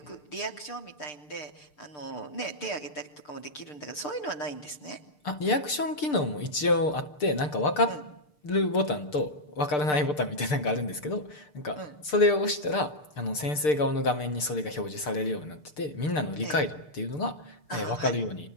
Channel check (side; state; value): right; late; 6.7 ms